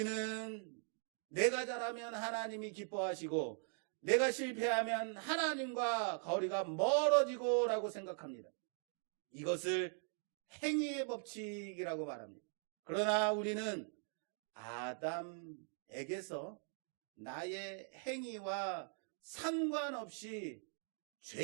내가 잘하면 하나님이 기뻐하시고 내가 실패하면 하나님과 거리가 멀어지고 라고 생각합니다. 이것을 행위의 법칙이라고 말합니다. 그러나 우리는 아담에게서 나의 행위와 상관없이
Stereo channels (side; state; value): left; silent; 50 dB below the other